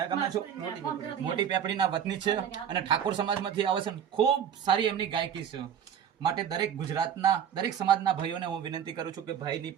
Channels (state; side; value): quieter; left; 8.8 dB